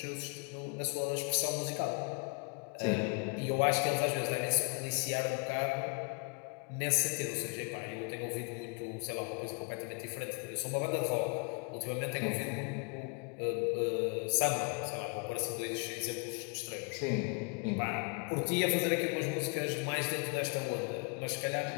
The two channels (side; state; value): right; quieter; 34.9 dB